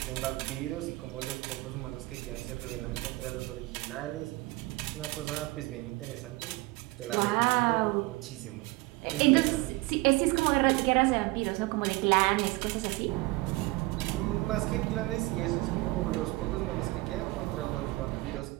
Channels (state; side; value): quieter; left; 21.6 dB